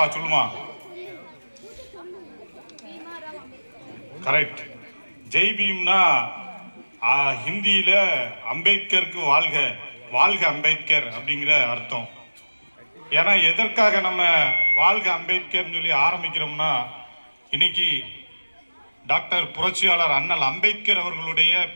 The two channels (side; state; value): both; inverted; correlation -1.00